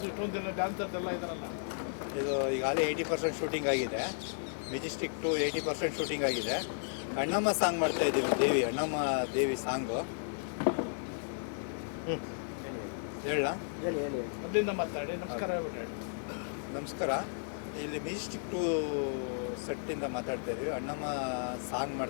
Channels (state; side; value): silent; right; digital silence